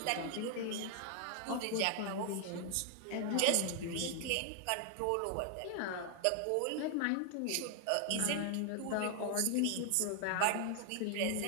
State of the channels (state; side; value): different; both; correlation 0.00